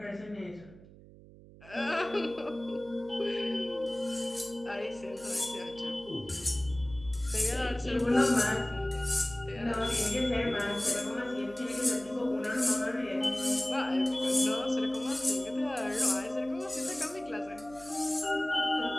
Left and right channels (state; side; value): noise; right; hum, 20 dB below the sound